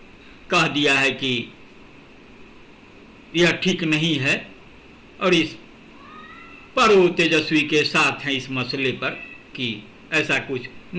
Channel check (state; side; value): identical; both; correlation 1.00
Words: कह दिया है कि यह ठीक नहीं है और इस पर वो तेजस्वी के साथ हैं इस मसले पर कि ऐसा कुछ